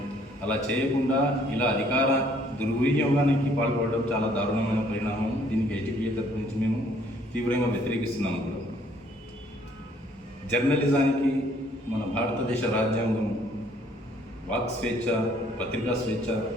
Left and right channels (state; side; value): normal; both; correlation 0.62